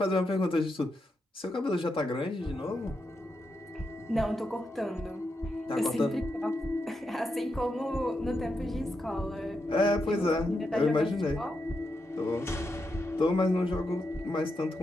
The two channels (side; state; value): both; normal; correlation 0.85